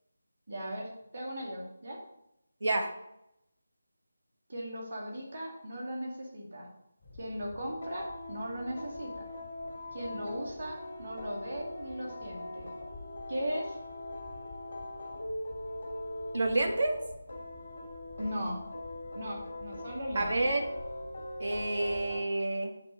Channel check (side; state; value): both; inverted; correlation -0.92